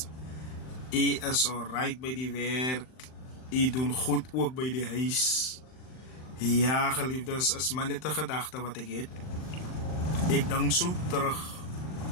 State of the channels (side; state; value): right; late; 39 ms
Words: U is alright bij die werk. U doet goed ook bij die huis. Ja geliefdes, is maar net een gedachte wat ik heb. Ik denk zo terug